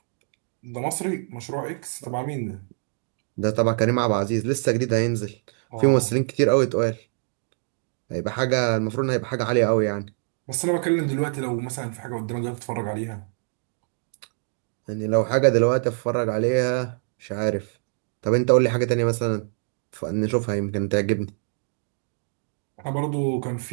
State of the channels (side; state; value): left; silent; digital silence